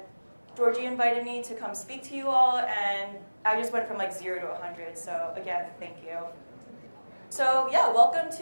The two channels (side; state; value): both; inverted; correlation -1.00